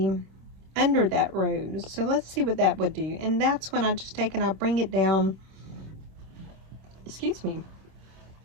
under that rose. So let's see what that would do. And that's when I just take and I bring it down. Excuse me.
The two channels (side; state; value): left; late; 26 ms